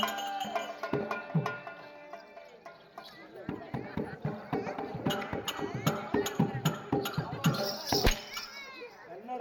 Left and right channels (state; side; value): identical; both; correlation 1.00